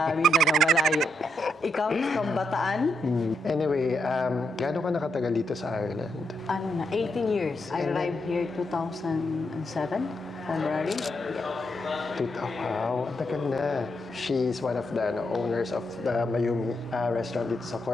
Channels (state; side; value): normal; both; correlation 0.81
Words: Mindanao, malayo. Ikaw, from Bataan? Anyway, gaano ka nakatagal dito sa Ireland? 18 years. I arrived here 2007, February. Wow, tagal na. She's one of the owners of the Mayumi restaurant dito sa